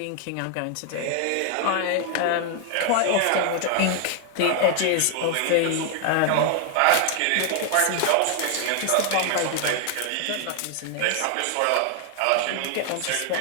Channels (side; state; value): both; different; correlation 0.00